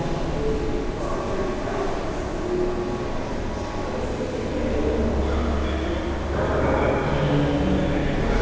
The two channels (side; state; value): both; identical; correlation 1.00